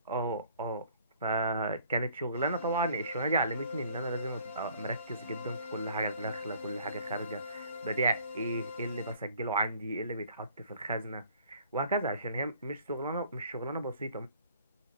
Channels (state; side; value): inverted; both; correlation -0.57